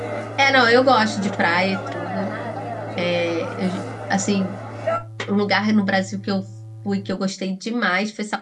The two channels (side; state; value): both; identical; correlation 1.00